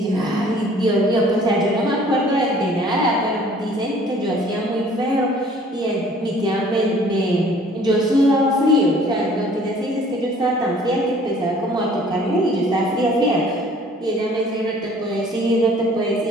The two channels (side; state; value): both; normal; correlation 0.54